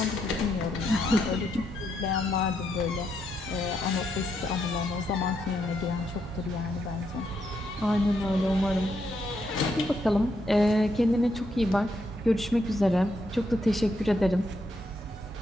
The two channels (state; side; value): normal; both; correlation 0.78